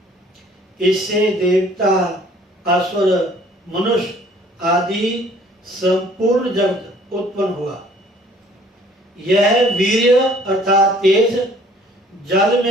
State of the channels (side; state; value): both; normal; correlation 0.56